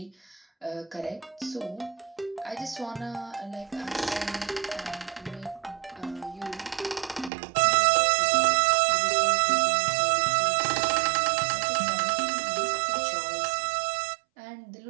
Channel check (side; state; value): left; drops out; at 7.3 s